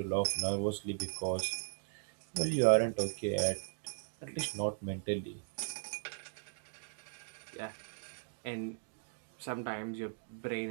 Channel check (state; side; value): silent; left; digital silence